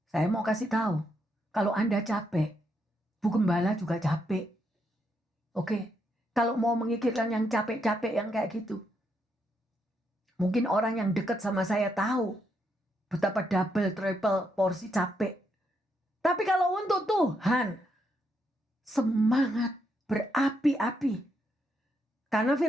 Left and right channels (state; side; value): normal; both; correlation 0.78